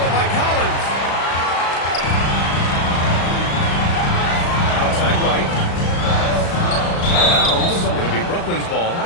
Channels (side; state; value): right; late; 35 ms